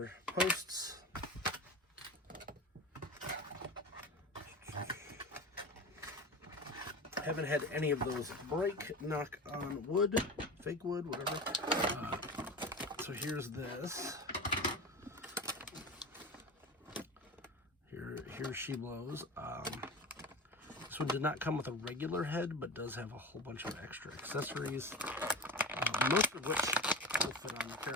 posts. Haven't had any of those break, knock on wood, fake wood, whatever. So here's this. Here she blows. This one did not come with a regular head, but does have a whole bunch of extra accessories, most of which will fit on the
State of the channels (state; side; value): normal; both; correlation 0.29